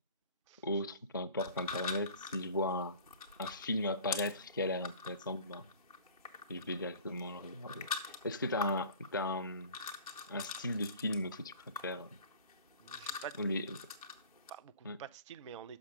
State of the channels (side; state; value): both; inverted; correlation -0.44